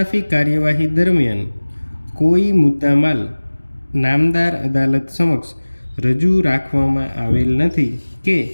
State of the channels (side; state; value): both; inverted; correlation -1.00